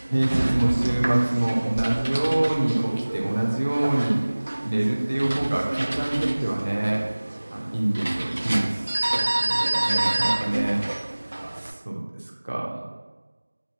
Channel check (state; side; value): inverted; both; correlation -1.00